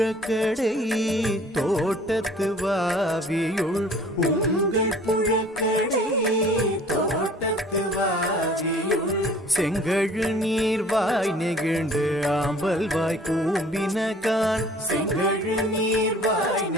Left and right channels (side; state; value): both; normal; correlation 0.51